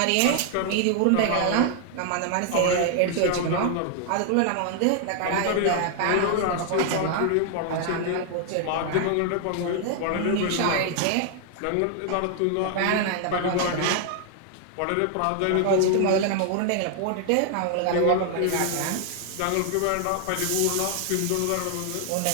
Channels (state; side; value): different; both; correlation 0.00